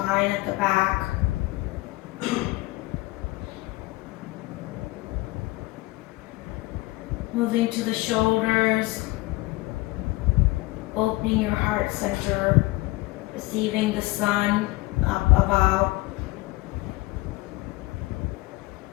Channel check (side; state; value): right; quieter; 21.0 dB